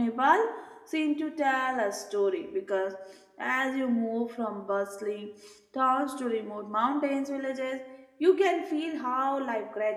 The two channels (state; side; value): identical; both; correlation 1.00